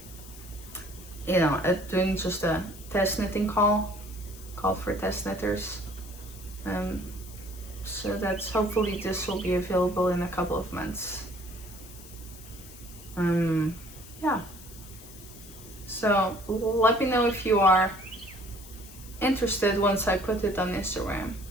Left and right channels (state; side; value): noise; left; hiss, 18 dB below the sound